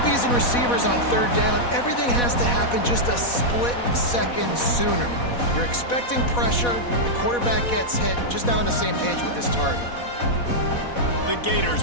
and receivers on 3rd down, everything has to happen just a split second sooner. You're expecting pressure, the quarterback gets hit, just not on the same page with this target. The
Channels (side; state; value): right; late; 4.1 ms